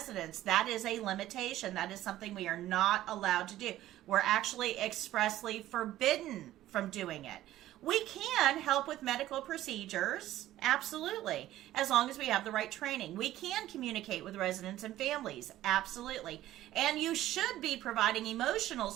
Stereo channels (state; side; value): quieter; left; 14.2 dB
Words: That is a limitation. That is something we are not allowed to do. We're actually expressly forbidden from doing it. We can help with medical procedures, absolutely, as long as we have the right training. We can communicate with residents and families, absolutely. And you should be providing emotional